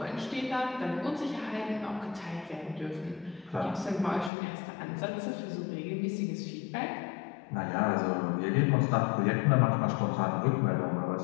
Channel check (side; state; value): right; drops out; at 4.3 s